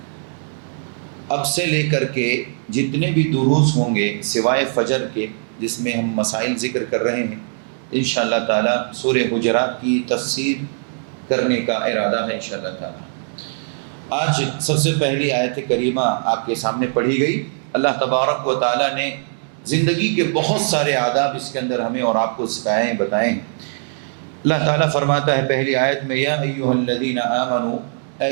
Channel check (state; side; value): silent; left; digital silence